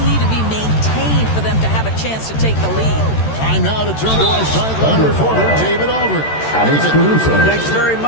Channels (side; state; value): right; late; 13 ms